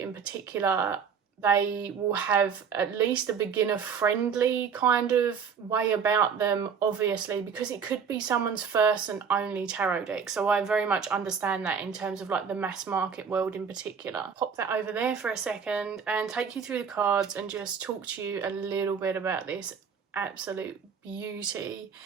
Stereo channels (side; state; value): left; quieter; 6.5 dB